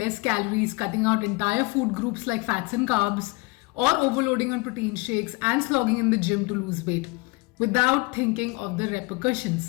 calories, cutting out entire food groups like fats and carbs, or overloading on protein shakes and slogging in the gym to lose weight, without thinking of the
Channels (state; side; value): quieter; right; 25.7 dB